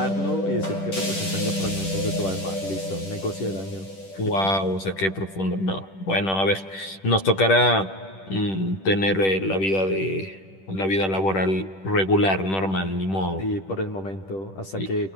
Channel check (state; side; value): late; right; 10 ms